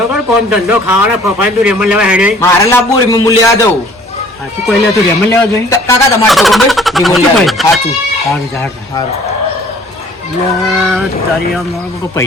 કર કોમ ધંધો ખાવાના ફફાઈ તું રેમન લેવા હેડે મારે લાવવું રિમોટ લેવા દઉં. સાચું કોઈ લે તું રેમન લેવા જોઈએ કાકા તમારે તો ભાઈ રિમોટ લેવા ભાઈ. સાચું સારું સારું સારું. તારી આમ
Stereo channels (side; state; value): both; normal; correlation 0.54